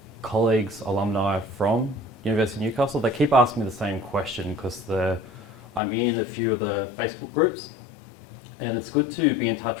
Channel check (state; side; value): drops out; right; at 5.8 s